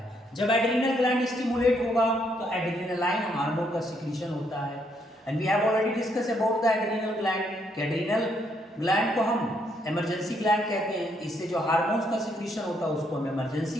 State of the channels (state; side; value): normal; both; correlation 0.73